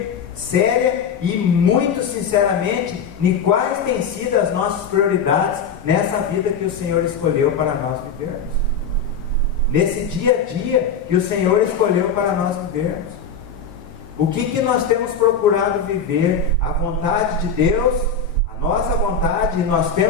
séria e muito sinceramente em quais têm sido as nossas prioridades nessa vida que o Senhor escolheu para nós vivermos, nesse dia a dia que o Senhor escolheu para nós vivermos. O que nós temos procurado viver? A vontade de Deus, a nossa vontade, e nós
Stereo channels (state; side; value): quieter; right; 5.5 dB